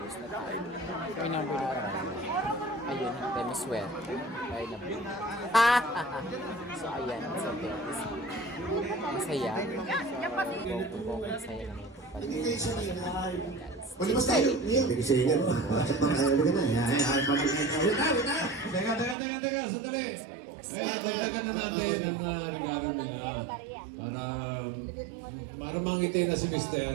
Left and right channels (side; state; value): left; drops out; at 19.2 s